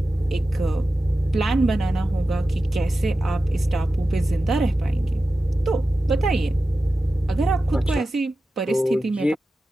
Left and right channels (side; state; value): both; normal; correlation 0.93